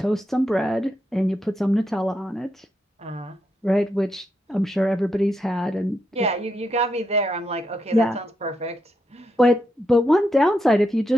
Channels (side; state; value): both; normal; correlation 0.82